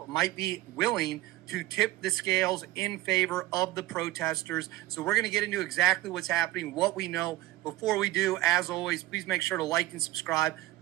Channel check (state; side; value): quieter; left; 17.1 dB